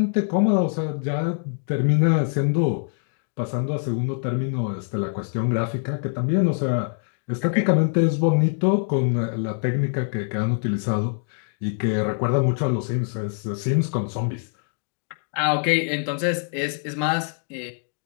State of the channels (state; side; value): silent; right; digital silence